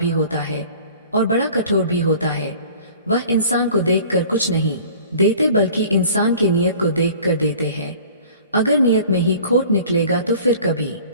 होता है और बड़ा कठोर भी होता है। वह इंसान को देखकर कुछ नहीं देते, बल्कि इंसान की नीयत को देखकर देते हैं। अगर नियत में ही खोट निकलेगा तो फिर कभी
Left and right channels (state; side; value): inverted; both; correlation -0.47